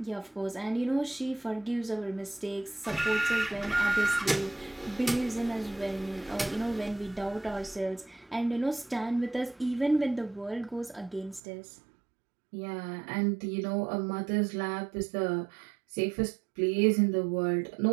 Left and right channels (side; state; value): left; drops out; at 11.4 s